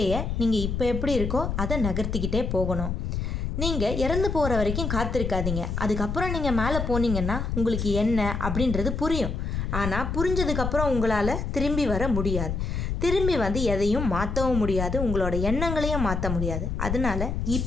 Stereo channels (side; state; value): left; noise; rumble, 2 dB below the sound